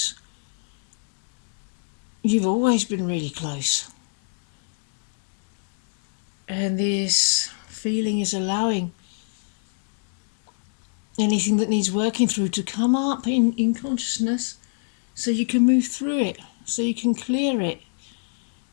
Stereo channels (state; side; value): silent; right; digital silence